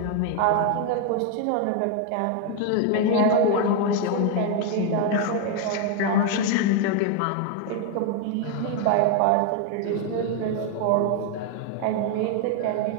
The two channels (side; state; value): both; different; correlation 0.01